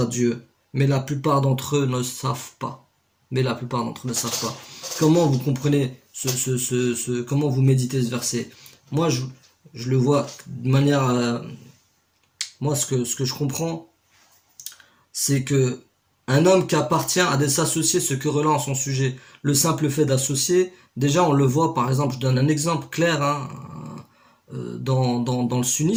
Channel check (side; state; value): both; identical; correlation 1.00